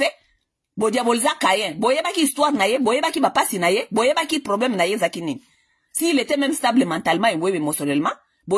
Bo diaboliza Caïn. Boyeba ki histoire na ye, boyeba ki bapasi na ye, boyeba ki problème na ye zakini. S'il était même stable mentalement et émotionnellement,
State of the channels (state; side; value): identical; both; correlation 1.00